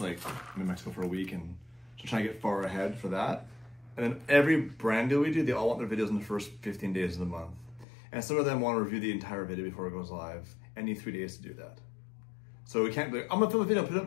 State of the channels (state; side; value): drops out; right; at 7.9 s